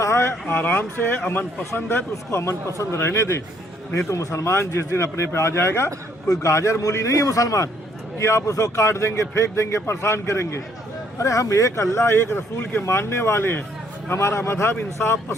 है, आराम से है, अमन पसंद है तो उसको अमन पसंद रहने दें, नहीं तो मुसलमान जिस दिन अपने पे आ जाएगा, कोई गाजर मूली नहीं है मुसलमान कि आप उसको काट देंगे, फेंक देंगे, परेशान करेंगे। अरे हम एक अल्लाह एक रसूल के मानने वाले हैं, हमारा मजहब इंसाफ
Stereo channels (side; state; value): both; normal; correlation 0.66